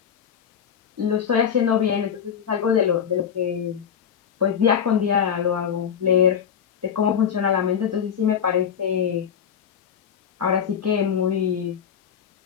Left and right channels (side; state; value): right; quieter; 8.1 dB